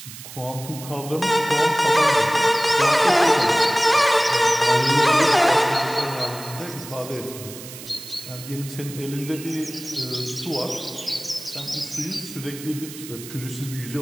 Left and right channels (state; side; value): noise; right; hiss, 14 dB below the sound